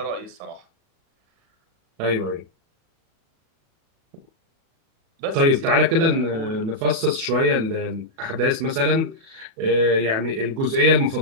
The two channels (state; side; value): late; left; 37 ms